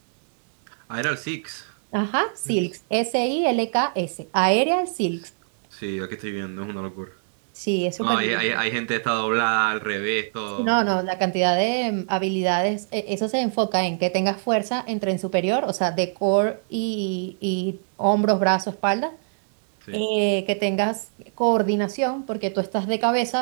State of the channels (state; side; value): silent; left; digital silence